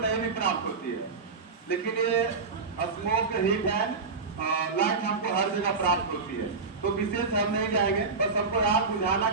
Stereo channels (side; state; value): left; quieter; 4.5 dB